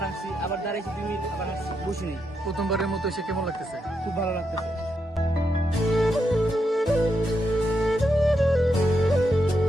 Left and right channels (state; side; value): normal; both; correlation 0.82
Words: আসছি, আবার দাঁড়াইছি 2 মিনিট, আবার আসছি, বসি নেই। প্রথমবারের মতো এসে কেমন লাগতেছে? খুব ভালো লাগতেছে।